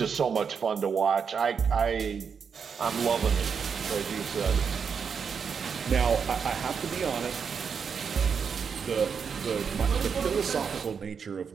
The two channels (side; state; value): left; quieter; 6.4 dB